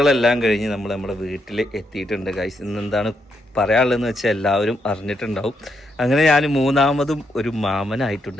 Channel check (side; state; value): both; normal; correlation 0.79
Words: കഴിഞ്ഞ് നമ്മൾ നമ്മുടെ വീട്ടിൽ എത്തിയിട്ടുണ്ട് ഗൈസ്. ഇന്നെന്താണ് പറയാനുള്ളതെന്ന് വെച്ചാൽ എല്ലാവരും അറിഞ്ഞിട്ടുണ്ടാവും. അങ്ങനെ ഞാൻ മൂന്നാമതും ഒരു മാമനായിട്ടുണ്ട്